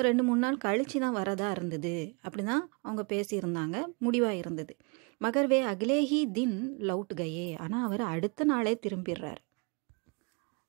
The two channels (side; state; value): left; quieter; 32.7 dB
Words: 2-3 நாள் கழிச்சு தான் வரதா இருந்தது. அப்படி தான் அவங்க பேசியிருந்தாங்க, முடிவாக இருந்தது. மகர்வே அகிலேஹி தின் லவுட் கயே. ஆனால் அவர் அடுத்த நாளே திரும்பிடுறார்.